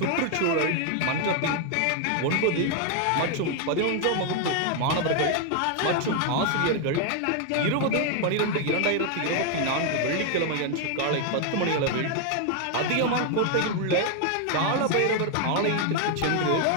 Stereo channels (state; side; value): different; both; correlation 0.01